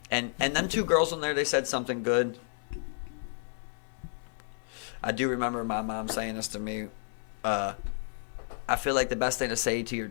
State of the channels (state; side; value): silent; right; 57 dB below the other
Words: And them two girls on there, they said something good. I do remember my mom saying this to me. I feel like the best thing to say to your